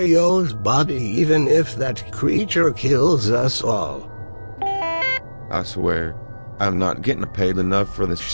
body even if that creature kills us all. I swear, I'm not getting paid enough for this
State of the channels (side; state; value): both; inverted; correlation -1.00